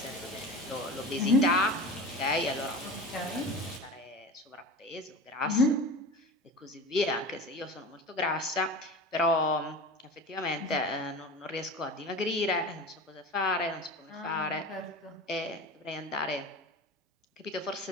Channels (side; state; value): both; normal; correlation 0.32